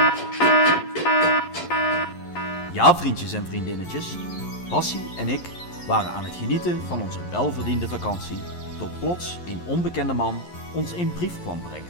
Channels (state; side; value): late; right; 11 ms